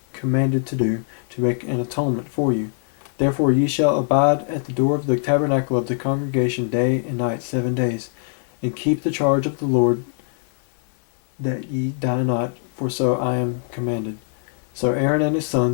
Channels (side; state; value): right; silent; digital silence